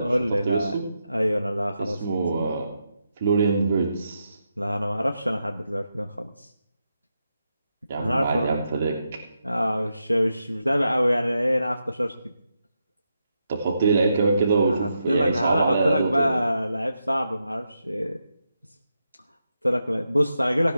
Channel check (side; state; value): both; inverted; correlation -0.85